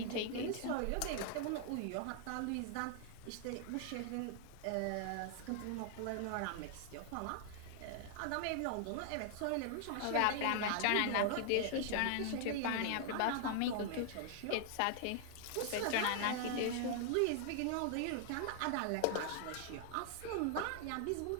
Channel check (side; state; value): both; different; correlation 0.00